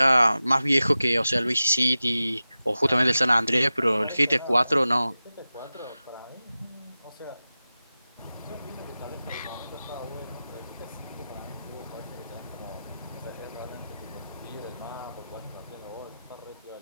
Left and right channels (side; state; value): both; inverted; correlation -0.94